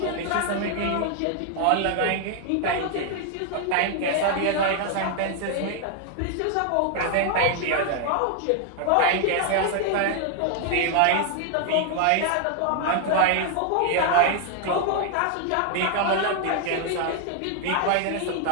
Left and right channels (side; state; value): both; different; correlation 0.00